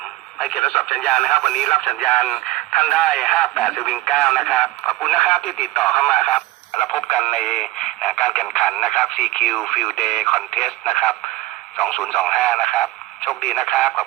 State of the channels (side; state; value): left; quieter; 17.9 dB